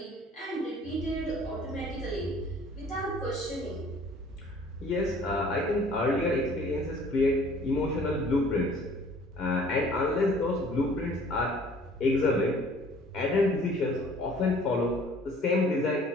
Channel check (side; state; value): both; normal; correlation 0.53